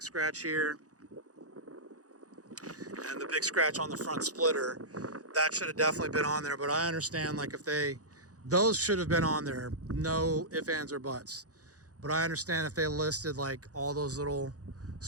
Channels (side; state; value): left; late; 0.67 ms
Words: scratch here and the big scratch on the front splitter. That should have definitely been on there, but I understand, like, if they, those should have been on there, no ifs, ands, or buts. But I understand if they listed like all those little